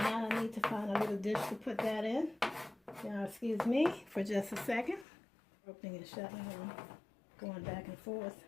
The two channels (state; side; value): drops out; right; at 5.1 s